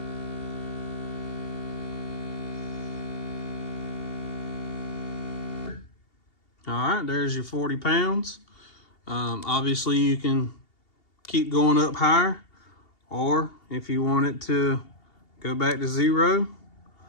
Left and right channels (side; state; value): right; late; 2.8 ms